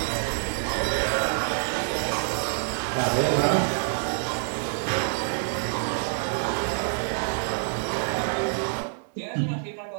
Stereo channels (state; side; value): silent; left; digital silence